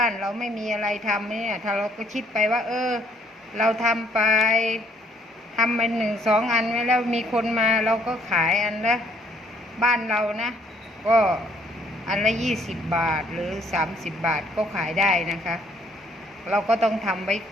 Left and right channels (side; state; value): both; normal; correlation 0.65